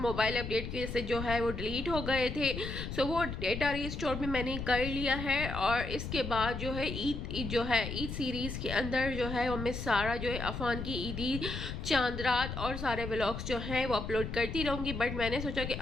अपडेट की वजह से जो है वो डिलीट हो गए थे, सो वो डेटा रिस्टोर भी मैंने कर लिया है। और इसके बाद जो है ईद सीरीज़ के अंदर जो है वो मैं सारा जो है अफान की ईदी, चांद रात और सारे व्लॉग्स जो हैं वो अपलोड करती रहूँगी। बट मैंने सोचा कि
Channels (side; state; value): left; noise; rumble, 6 dB below the sound